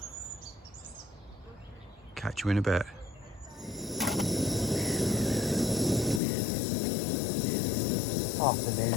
Catch you in a bit.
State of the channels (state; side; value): drops out; right; at 6.2 s